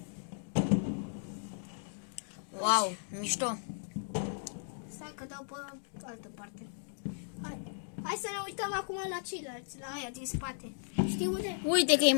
Wow, mișto. Stai că dau pe altă parte. Hai să ne uităm acum la ceilalți, la aia din spate. Știi unde? Uite că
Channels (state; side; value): silent; right; digital silence